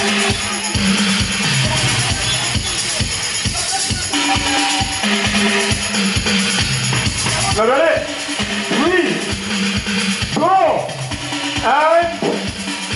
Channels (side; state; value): both; identical; correlation 1.00